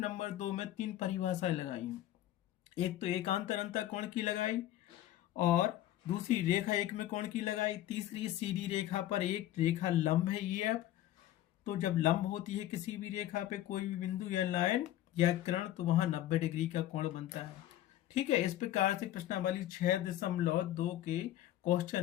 नंबर 2 में 3 परिभाषाएं लगाई हैं। एक तो एकांतर अंतः कोण की लगाई, और दूसरी रेखा युग्म कोण की लगाई, तीसरी सीधी रेखा पर एक रेखा लंब है EF। तो जब लंब होती है किसी भी रेखा पे कोई भी बिंदु या लाइन या किरण, तो वहां 90 डिग्री का कोण बनता है। ठीक है, इस प्रकार से प्रश्नावली 6.2 के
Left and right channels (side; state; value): right; quieter; 13.4 dB